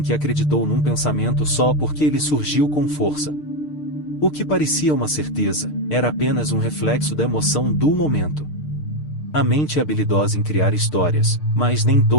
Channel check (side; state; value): right; late; 6.6 ms